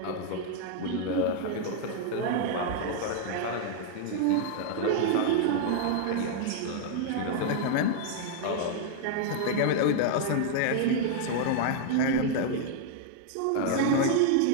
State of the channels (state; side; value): different; both; correlation 0.00